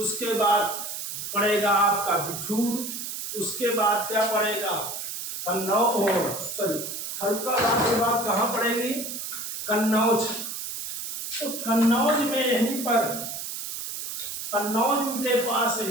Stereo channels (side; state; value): right; noise; hiss, 6 dB below the sound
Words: बाद पड़ेगा आपका बिठूर। उसके बाद क्या पड़ेगा? फर्रुखाबाद के बाद कहाँ पड़ेगी? कन्नौज। तो कन्नौज में यहीं पर कन्नौज के पास